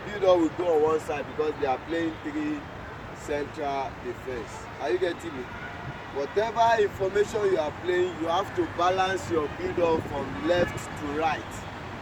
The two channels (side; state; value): both; identical; correlation 1.00